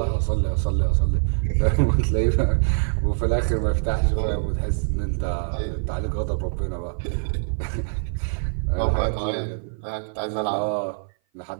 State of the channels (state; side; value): silent; left; 57 dB below the other